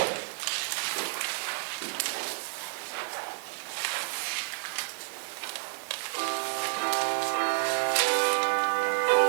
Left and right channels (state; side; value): silent; left; 58 dB below the other